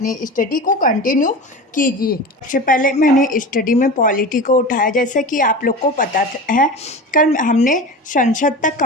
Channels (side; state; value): both; normal; correlation 0.30